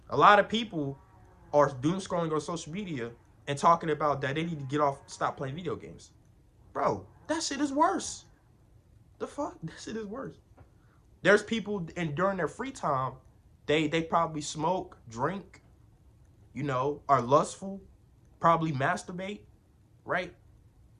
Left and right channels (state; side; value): identical; both; correlation 1.00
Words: A lot of people are doom scrolling on social media and talking about that they need to stop playing video games. Bro, that shit is worse. The fuck? That shit is worse. There's people, and during their free time, they probably smoke, drink, are lustful, probably masturbate, right?